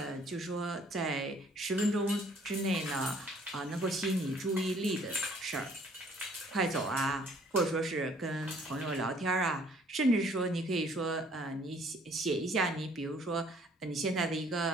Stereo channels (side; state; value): both; normal; correlation 0.59